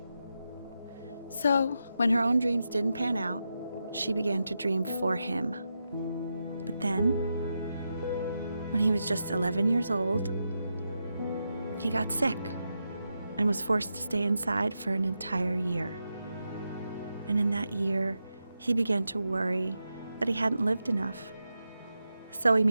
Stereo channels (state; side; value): inverted; both; correlation -0.88